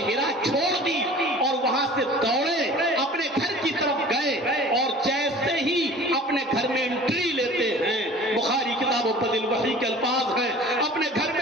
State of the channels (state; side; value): normal; both; correlation 0.44